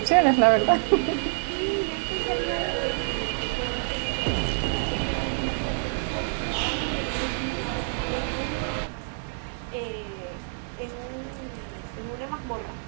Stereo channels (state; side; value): silent; left; digital silence